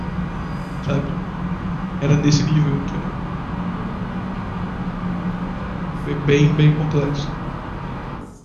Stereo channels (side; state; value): both; identical; correlation 1.00